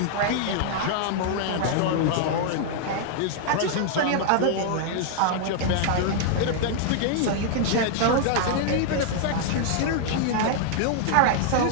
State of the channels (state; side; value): different; both; correlation -0.01